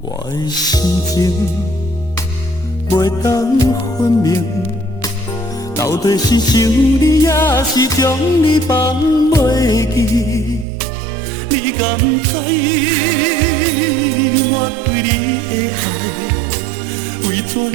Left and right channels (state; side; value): drops out; left; at 10.7 s